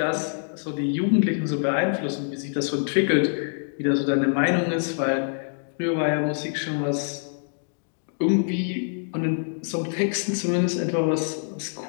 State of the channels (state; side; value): silent; right; digital silence